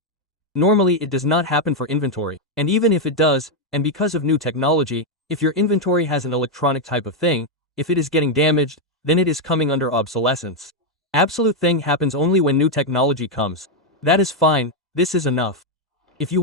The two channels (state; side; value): normal; both; correlation 0.02